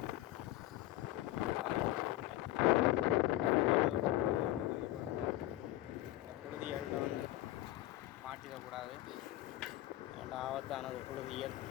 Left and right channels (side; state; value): right; quieter; 16.3 dB